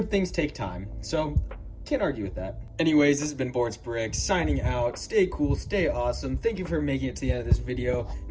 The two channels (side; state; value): both; identical; correlation 1.00